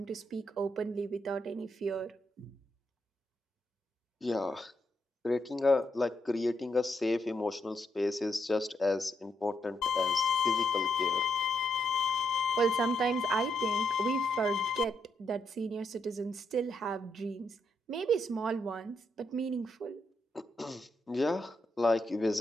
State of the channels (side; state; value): both; normal; correlation 0.79